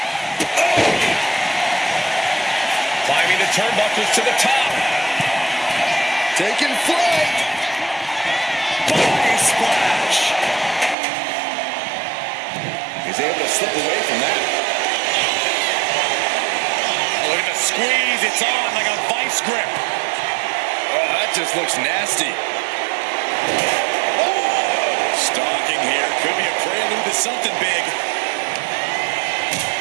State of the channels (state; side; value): drops out; left; at 11.0 s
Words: Climbing the turnbuckles to the top. Taking flight. Body splash. He's able to slip away from that. Look at the squeeze. It's on like a vice grip. Oh, that just looks nasty. Stalking here. Could be a prelude to something big.